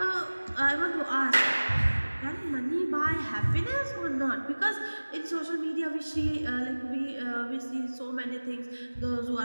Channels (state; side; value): inverted; both; correlation -1.00